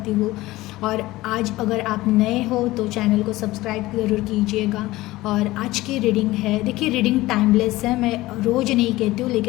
हूँ। और आज अगर आप नए हो तो चैनल को सब्सक्राइब ज़रूर कीजिएगा। और आज की रीडिंग है, देखिए रीडिंग टाइमलेस है, मैं रोज़ नहीं कहती हूँ,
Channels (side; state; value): right; quieter; 18.2 dB